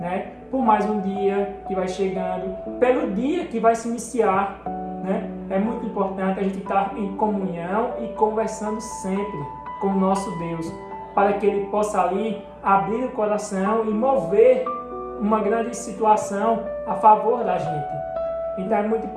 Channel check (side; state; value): both; identical; correlation 1.00